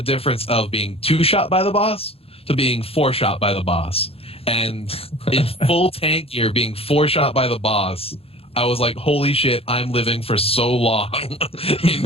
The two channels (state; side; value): late; right; 0.28 ms